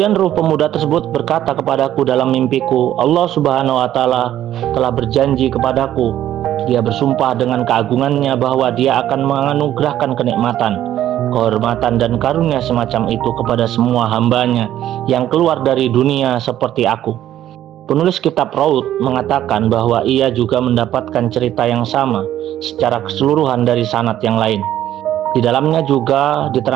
ruh pemuda tersebut berkata kepadaku dalam mimpiku, Allah Subhanahu wa Ta'ala telah berjanji kepadaku, Dia bersumpah dengan keagungannya bahwa Dia akan menganugerahkan kenikmatan, kehormatan, dan karunia semacam itu kepada semua hambanya yang keluar dari dunia seperti aku. Penulis kitab Raud mengatakan bahwa ia juga mendapatkan cerita yang sama secara keseluruhan dari sanad yang lain. Di dalamnya juga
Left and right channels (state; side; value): quieter; left; 12.2 dB